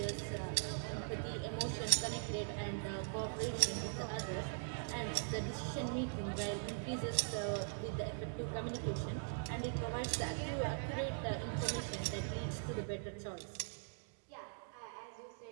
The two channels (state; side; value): silent; left; digital silence